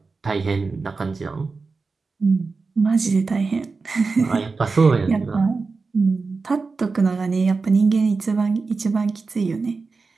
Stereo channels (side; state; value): left; quieter; 4.3 dB